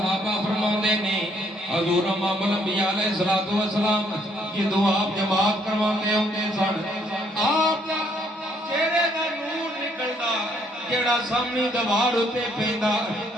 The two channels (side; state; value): both; normal; correlation 0.68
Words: فرماندے نے حضور امام الانبیاء علیہ الصلوۃ والسلام جدوں آپ جماعت کرواندے ہوندے سن آپ دا چہرے دا نور نکلدا جیڑا سامنے دیوار اتے پیندا